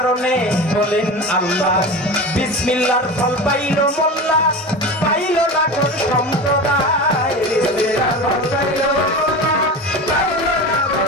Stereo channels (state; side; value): normal; both; correlation 0.29